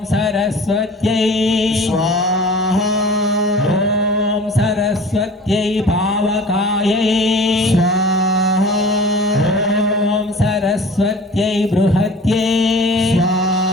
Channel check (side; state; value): both; normal; correlation 0.42